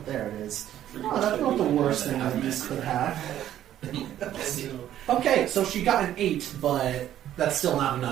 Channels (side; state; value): left; quieter; 11.7 dB